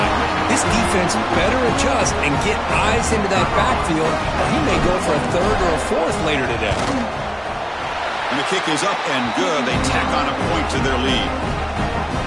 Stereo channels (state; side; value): identical; both; correlation 1.00